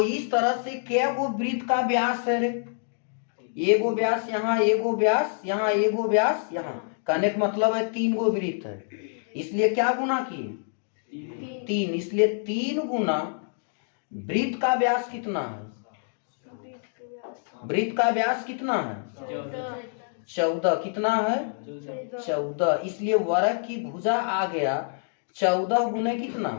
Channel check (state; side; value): silent; right; digital silence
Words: इस तरह से क्या वो वृत्त का व्यास है रे? एगो व्यास यहाँ, एगो व्यास यहाँ, एगो व्यास यहाँ। कहने का मतलब है 3 गो वृत्त है, इसलिए क्या गुना किए? 3। इसलिए 3 गुना वृत्त का व्यास कितना है? वृत्त का व्यास कितना है? 14। कितना है? 14। इसलिए वर्ग की भुजा आ गया 14 गुने कितना?